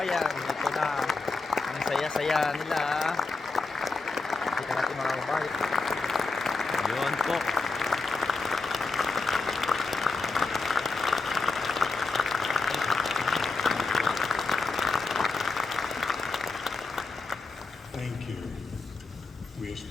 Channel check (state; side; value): quieter; right; 3.9 dB